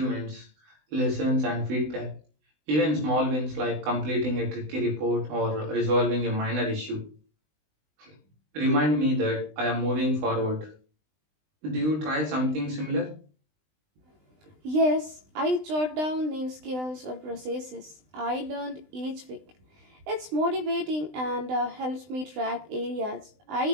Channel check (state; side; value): late; left; 20 ms